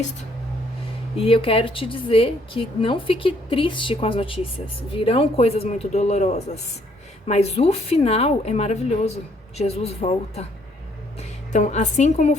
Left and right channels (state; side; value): normal; both; correlation 0.66